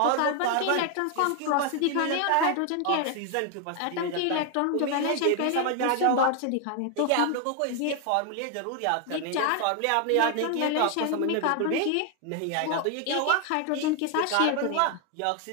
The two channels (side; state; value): both; different; correlation 0.00